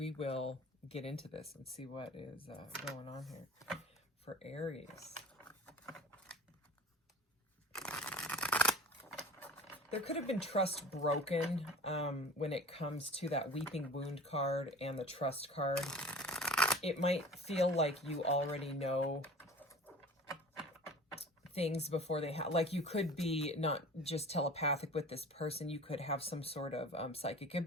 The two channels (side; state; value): both; normal; correlation 0.40